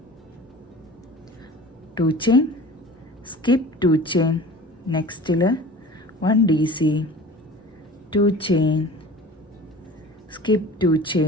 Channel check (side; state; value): both; normal; correlation 0.41